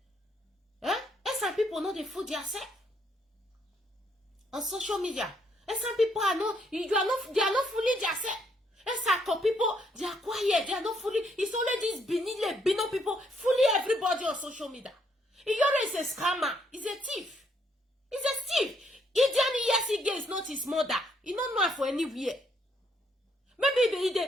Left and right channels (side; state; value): both; normal; correlation 0.72